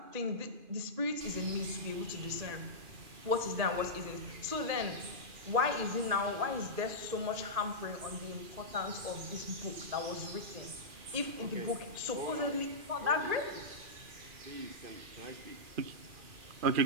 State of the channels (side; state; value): left; late; 2.4 ms